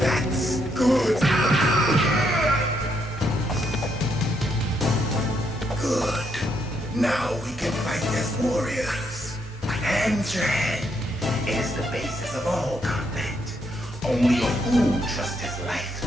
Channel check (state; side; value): normal; both; correlation 0.76